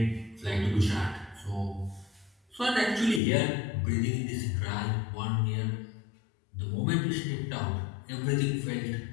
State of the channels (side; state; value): right; drops out; at 3.2 s